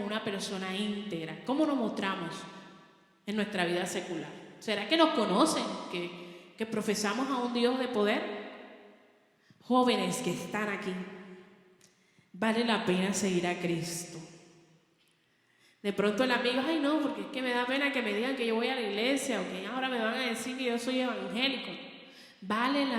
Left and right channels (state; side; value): identical; both; correlation 1.00